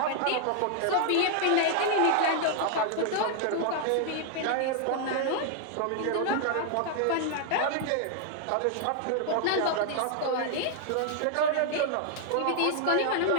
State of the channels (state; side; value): different; both; correlation 0.00